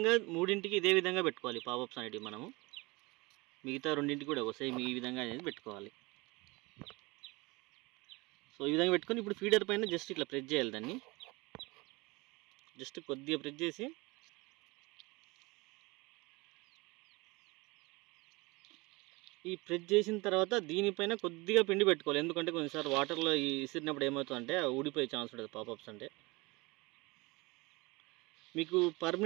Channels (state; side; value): quieter; left; 24.3 dB